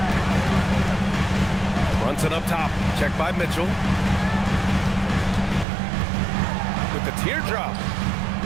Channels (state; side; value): drops out; left; at 5.7 s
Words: Brunson up top. Checked by Mitchell. With the teardrop.